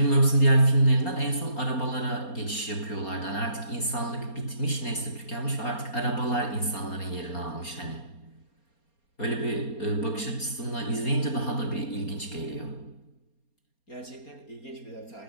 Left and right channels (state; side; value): late; right; 4.3 ms